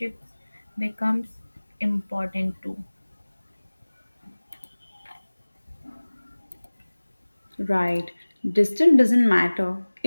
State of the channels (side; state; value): both; inverted; correlation -1.00